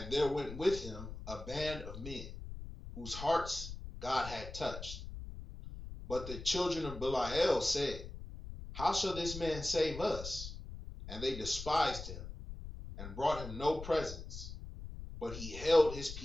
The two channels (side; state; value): left; noise; rumble, 10 dB below the sound